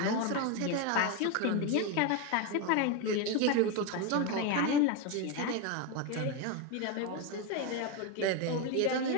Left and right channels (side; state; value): both; different; correlation 0.03